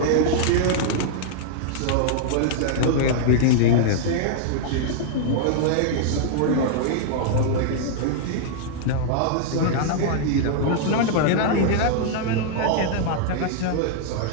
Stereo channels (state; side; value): different; both; correlation -0.01